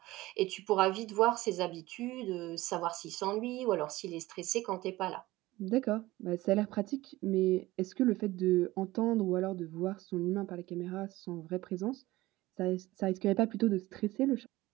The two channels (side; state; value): left; quieter; 18.3 dB